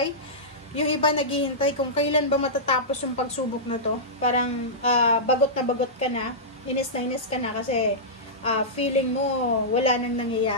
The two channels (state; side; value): normal; both; correlation -0.15